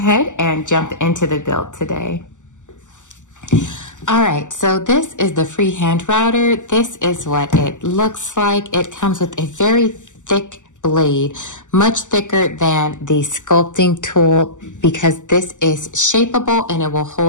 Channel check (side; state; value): right; late; 0.85 ms